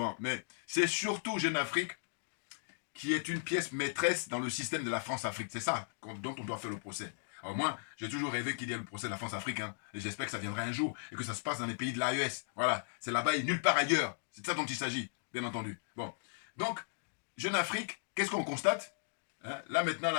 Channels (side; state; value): right; silent; digital silence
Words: Mais c'est surtout Jeune Afrique qui est une pièce maîtresse dans le système de la France-Afrique. C'est ça dont on doit faire le procès. Alors moi, j'ai toujours rêvé qu'il y ait le procès de la France-Afrique, hein, et j'espère que ça viendra un jour, et que ça se passe dans les pays de l'AES. Voilà, c'est là-bas et nulle part ailleurs. C'est de ça dont il s'agit, bien entendu. Bon, donc, Jeune Afrique, qu'est-ce qu'on constate? Hein, là maintenant,